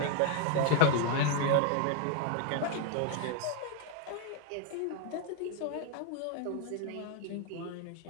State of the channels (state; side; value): different; both; correlation 0.00